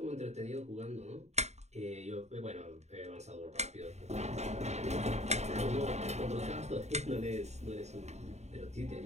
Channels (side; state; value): left; late; 0.32 ms